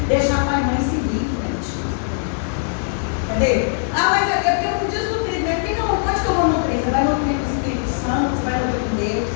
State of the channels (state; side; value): silent; right; 65 dB below the other